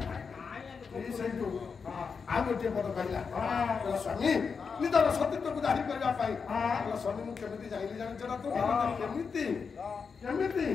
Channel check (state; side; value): quieter; right; 5.6 dB